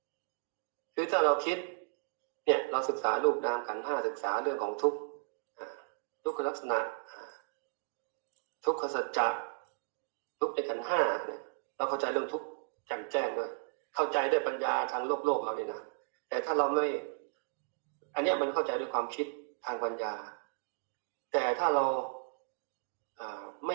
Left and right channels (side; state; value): left; silent; digital silence